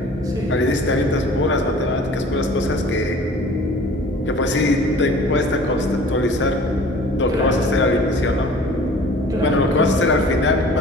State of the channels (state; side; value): normal; both; correlation 0.47